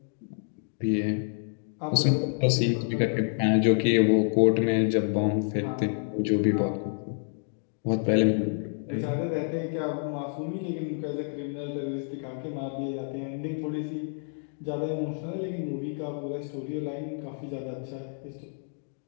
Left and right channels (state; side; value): silent; right; digital silence